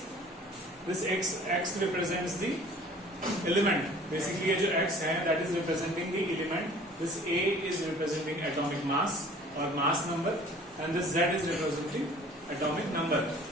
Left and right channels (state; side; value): normal; both; correlation 0.49